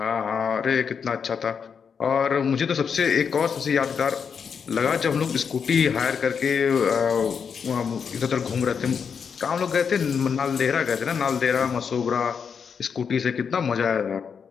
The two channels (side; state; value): right; quieter; 6.5 dB